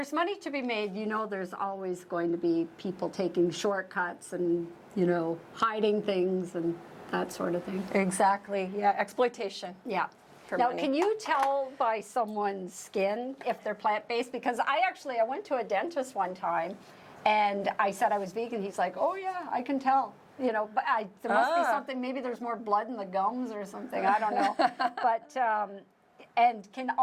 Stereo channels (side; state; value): both; identical; correlation 1.00